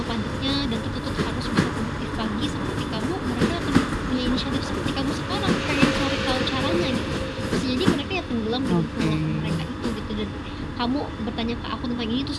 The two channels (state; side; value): identical; both; correlation 1.00